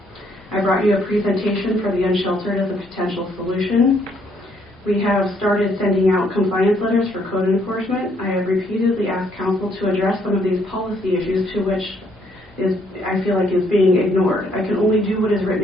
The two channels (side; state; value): both; normal; correlation 0.69